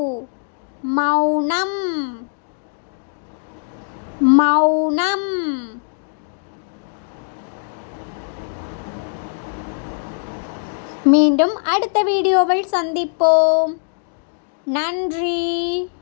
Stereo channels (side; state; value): right; silent; digital silence